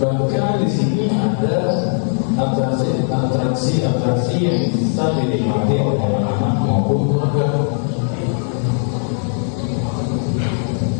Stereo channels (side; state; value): right; silent; 65 dB below the other